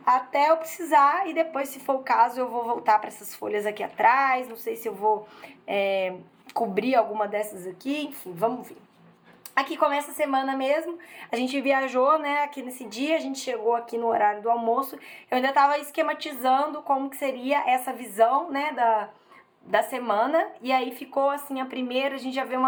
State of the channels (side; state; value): both; identical; correlation 1.00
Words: até eu precisar, e depois, se for o caso, eu vou voltar para essas folhas aqui atrás. Não sei se eu vou cobrir alguma dessas aqui, enfim, vamos ver. Aqui começa a semana mesmo, a gente viajou, né, aqui nesse dia, a gente chegou aqui no horário do almoço, eu ainda tava esquematizando como que seria essa visão, né, da semana, e aí ficou assim a primeira, a gente já vê